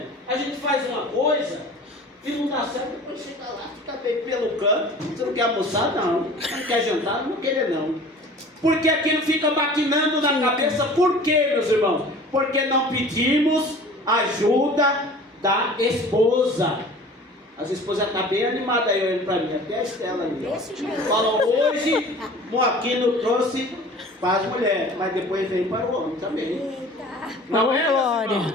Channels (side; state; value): both; normal; correlation 0.44